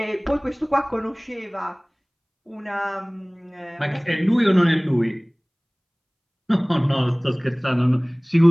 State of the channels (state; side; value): identical; both; correlation 1.00